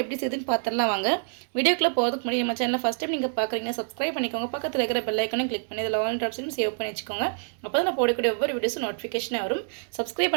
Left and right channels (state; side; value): silent; left; 60 dB below the other